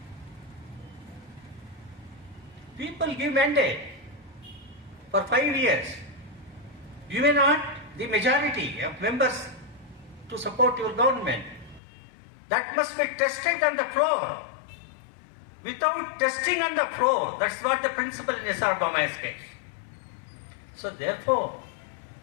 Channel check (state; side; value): drops out; right; at 11.8 s